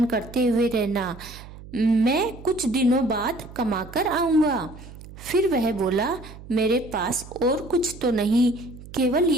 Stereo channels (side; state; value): right; noise; hum, 16 dB below the sound